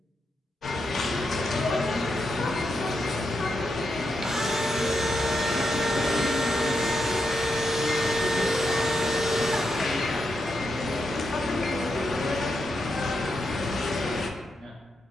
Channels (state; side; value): normal; both; correlation 0.84